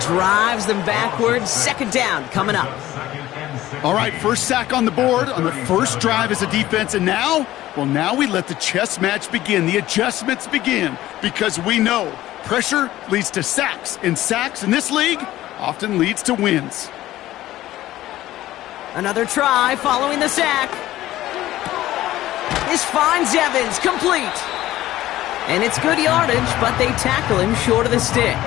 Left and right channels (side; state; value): right; quieter; 15.0 dB